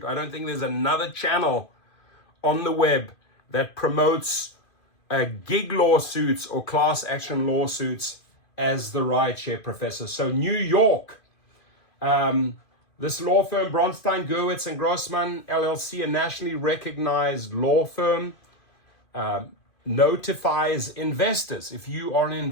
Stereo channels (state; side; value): late; right; 2.5 ms